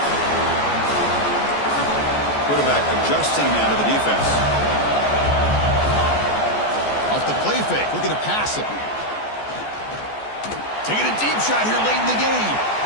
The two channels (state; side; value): late; right; 14 ms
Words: Quarterback adjusting now to the defense. Off the play fake, looking to pass it. Taking a deep shot here late in the game.